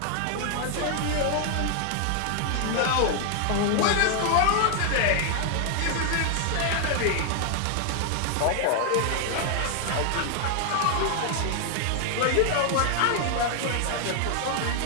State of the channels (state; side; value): different; both; correlation 0.00